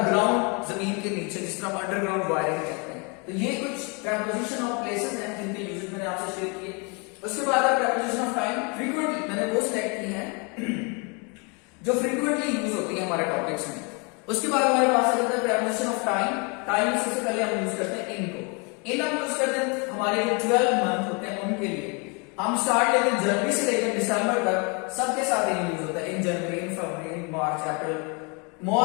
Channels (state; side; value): quieter; right; 32.5 dB